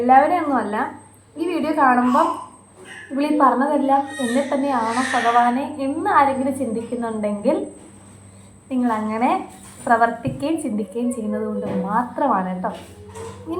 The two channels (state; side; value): identical; both; correlation 1.00